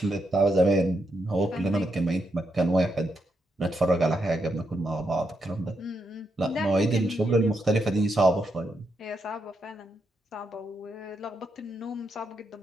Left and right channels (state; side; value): normal; both; correlation 0.81